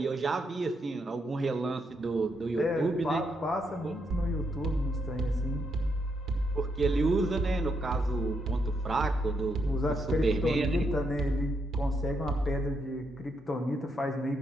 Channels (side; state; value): both; normal; correlation 0.79